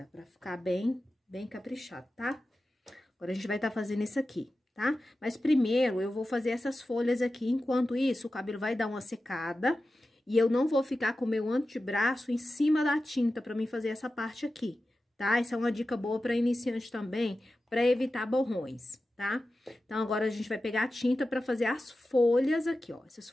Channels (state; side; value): normal; both; correlation 0.93